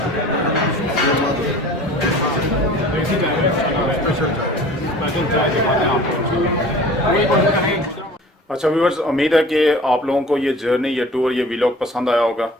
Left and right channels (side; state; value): both; normal; correlation 0.44